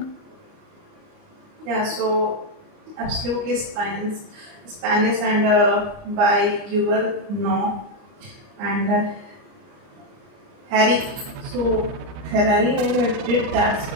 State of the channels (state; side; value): late; left; 29 ms